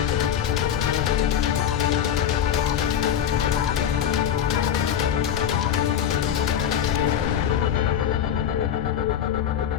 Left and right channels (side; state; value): right; quieter; 9.4 dB